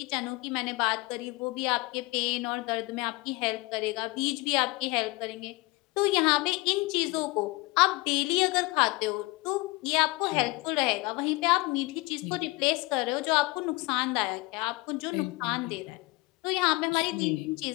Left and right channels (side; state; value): right; quieter; 23.9 dB